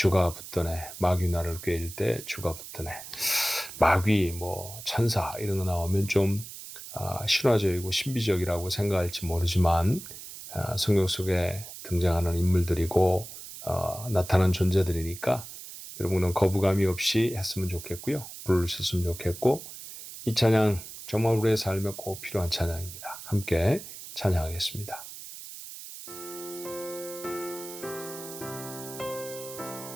붙드네. 마귀 나를 꾀일 때 주가 붙드네. 마귀, 천사 이런 거 나오면 좀 신화적이고 신비적이라고 생각할지 모르지만 성경 속에 등장하는 인물들이고 나타난 존재들이니까 여러분은 거부감이 없이 했으면 좋겠고요. 부르셨으면 좋겠고, 이 찬양 정말 우리의 삶에 꼭 필요한 찬양입니다. 함께 찬양하겠습니다.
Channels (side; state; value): right; noise; hiss, 12 dB below the sound